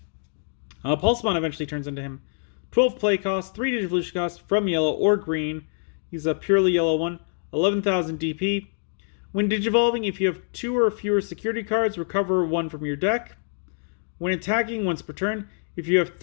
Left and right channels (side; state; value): right; silent; digital silence